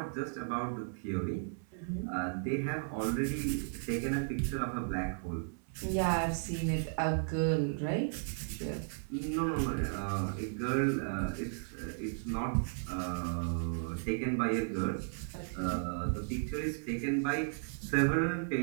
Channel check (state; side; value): silent; left; 54 dB below the other